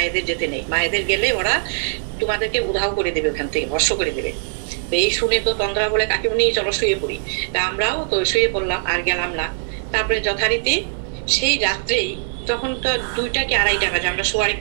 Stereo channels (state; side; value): silent; left; digital silence